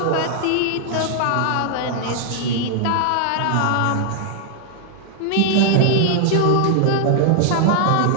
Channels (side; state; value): both; different; correlation -0.01